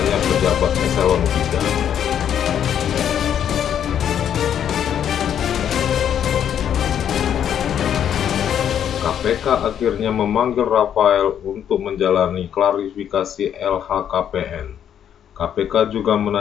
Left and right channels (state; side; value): quieter; right; 9.3 dB